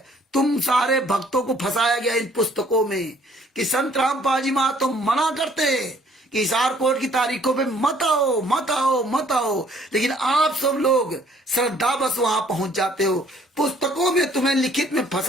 तुम सारे भक्तों को फंसाया गया इन पुस्तकों में कि संत रामपाल जी महाराज तो मना करते हैं कि हिसार कोर्ट की तारीखों पे मत आओ मत आओ मत आओ, लेकिन आप सब लोग श्रद्धा बस वहां पहुंच जाते हो। पुस्तकों में तुम्हें लिखित में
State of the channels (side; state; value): both; normal; correlation 0.60